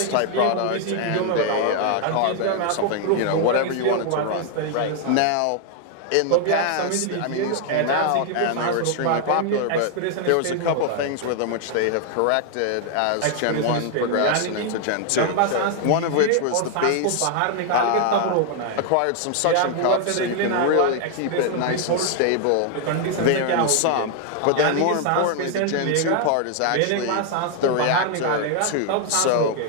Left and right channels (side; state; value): both; different; correlation 0.00